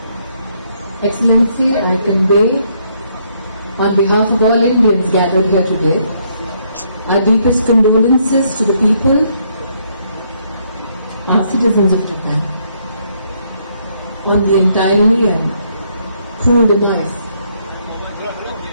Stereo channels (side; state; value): both; inverted; correlation -0.71